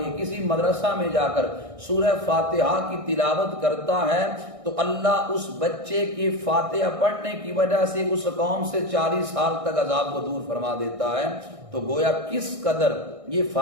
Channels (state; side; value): late; left; 1.6 ms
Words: کسی مدرسہ میں جا کر سورہ فاتحہ کی تلاوت کرتا ہے تو اللہ اس بچے کی فاتحہ پڑھنے کی وجہ سے اس قوم سے 40 سال تک عذاب کو دور فرما دیتا ہے۔ تو گویا کس قدر یہ